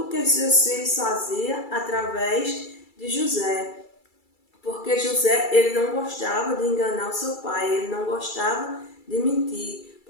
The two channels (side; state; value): right; late; 2.3 ms